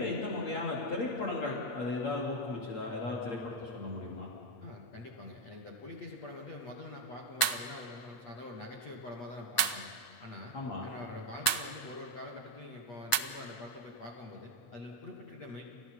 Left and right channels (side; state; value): right; late; 8.2 ms